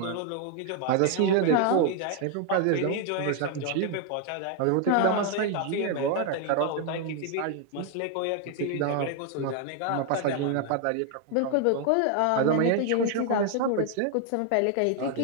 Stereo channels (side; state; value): both; different; correlation 0.00